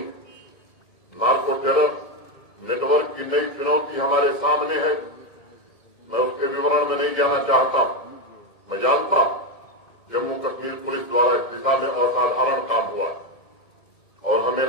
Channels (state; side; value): late; right; 1.6 ms